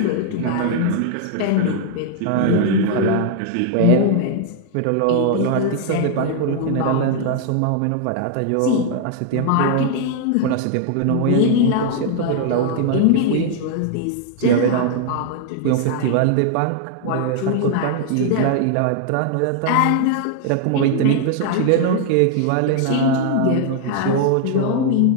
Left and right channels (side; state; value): both; different; correlation 0.00